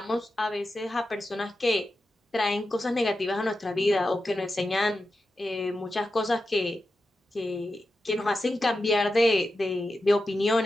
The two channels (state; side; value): normal; both; correlation 0.91